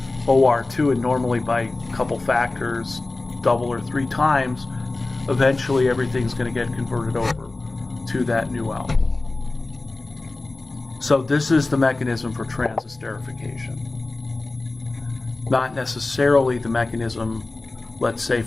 OR2, and normally by a couple factors, double or three times, eventually everything's going to get converted over to that new alcohol. So this is the mechanism for transesterification. Not necessarily the mechanism, let's say,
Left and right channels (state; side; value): quieter; right; 3.2 dB